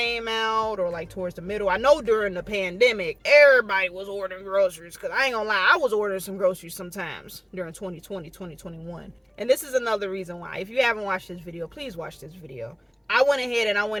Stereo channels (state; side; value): identical; both; correlation 1.00